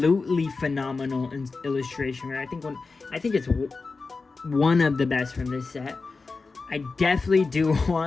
phenomenal in illustration rare. I think it's one of the best from this set. I definitely do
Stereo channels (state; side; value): quieter; right; 4.1 dB